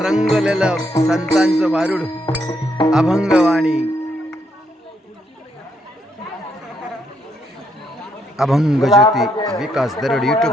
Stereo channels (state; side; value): normal; both; correlation 0.75